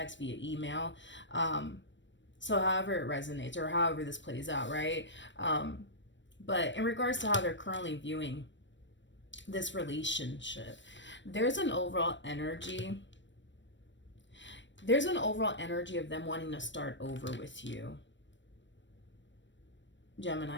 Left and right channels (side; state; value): right; late; 0.53 ms